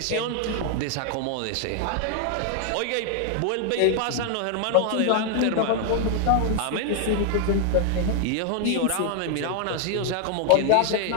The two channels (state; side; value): different; both; correlation 0.00